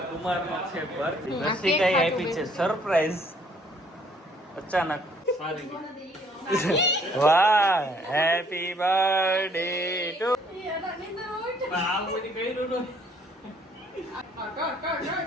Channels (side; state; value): both; normal; correlation 0.62